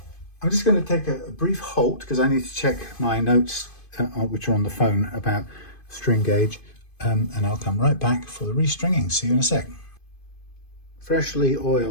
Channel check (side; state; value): right; late; 2.5 ms